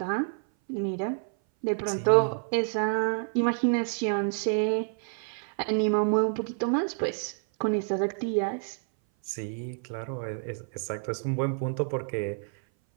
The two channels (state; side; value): silent; left; 57 dB below the other